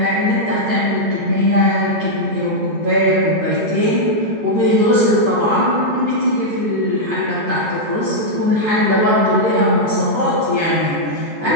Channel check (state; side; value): late; left; 14 ms